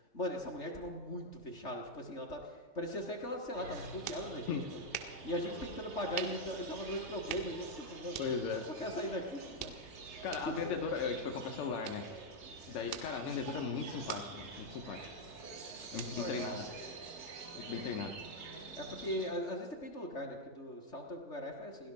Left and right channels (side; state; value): right; late; 2.9 ms